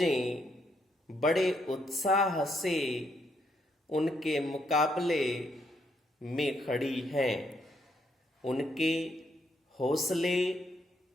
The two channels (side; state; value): both; normal; correlation 0.75